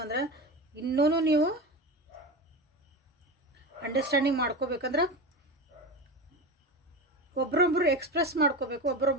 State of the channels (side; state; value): both; normal; correlation 0.24